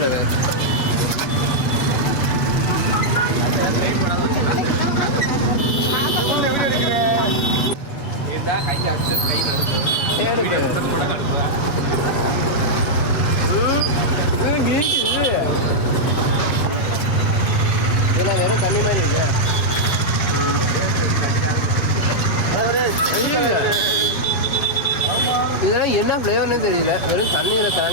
இதெல்லாம் வெறும் தண்ணி மாதிரி இருக்கு. இதெல்லாம் என்ன ஃப்ளேவர்னே தெரியல. வெறும் தண்ணியில்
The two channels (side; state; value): right; late; 7.7 ms